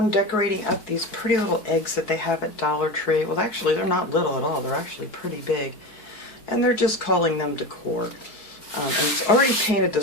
decorating up these pretty little eggs that they have at Dollar Tree. Well, actually they're not little at all, they're actually pretty big. And they're just calling them Decor. And it's already painted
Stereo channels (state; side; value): late; right; 4.7 ms